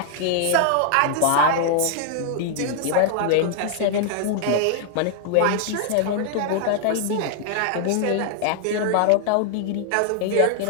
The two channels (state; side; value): different; both; correlation 0.00